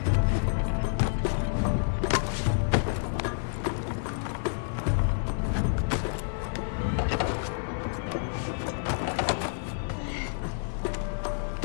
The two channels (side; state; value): right; silent; digital silence